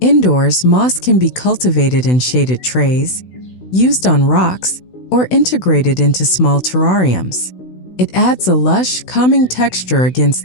Indoors, moss can be cultivated in shaded trays, used on rocks, or integrated into small terrariums. It adds a lush, calming texture against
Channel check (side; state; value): right; late; 16 ms